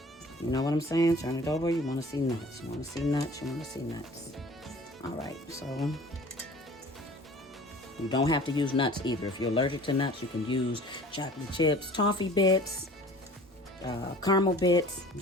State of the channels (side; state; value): both; normal; correlation 0.46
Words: You know what I'm saying? Turn it over. You want to see nuts. You want to see nuts. You want to see nuts. All right, so you don't have to use nuts either. If you're allergic to nuts, you can use chocolate chips, toffee bits, caramel bits.